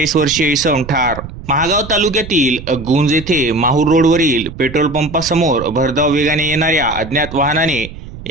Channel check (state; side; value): noise; right; rumble, 13 dB below the sound